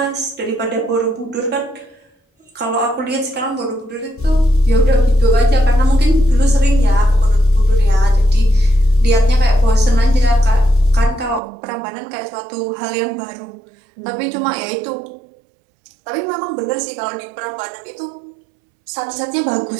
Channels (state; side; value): drops out; left; at 11.4 s